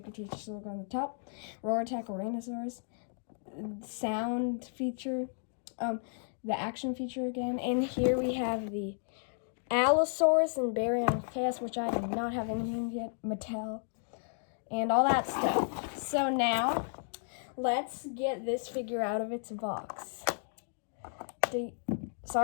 Cretaceous logo on the top. Roar Attack Ouranosaurus. Sound feature. The action feature again. And here we have the Allosaurus and Baryonychus, which I do not have anything yet. Mattel. And all that stuff. So now, let's get this figure out of its box.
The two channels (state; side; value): silent; right; digital silence